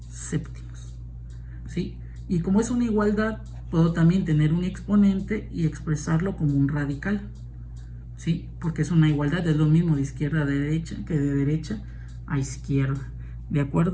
séptimos, ¿sí? Y como es una igualdad, puedo también tener un exponente y expresarlo como un radical, ¿sí? Porque es una igualdad, es lo mismo de izquierda a derecha que de derecha a izquierda, ¿de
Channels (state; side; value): identical; both; correlation 1.00